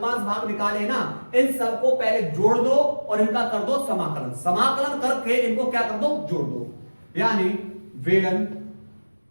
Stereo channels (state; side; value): inverted; both; correlation -1.00